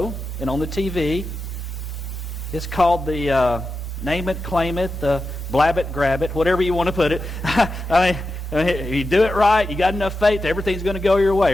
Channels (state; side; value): normal; both; correlation 0.90